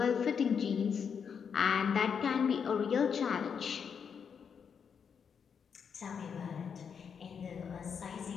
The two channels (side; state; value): right; quieter; 6.8 dB